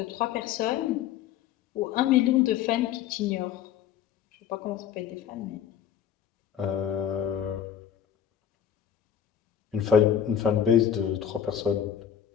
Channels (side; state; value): right; quieter; 9.4 dB